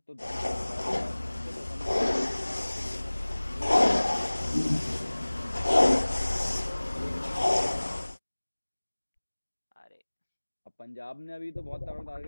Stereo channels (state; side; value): inverted; both; correlation -1.00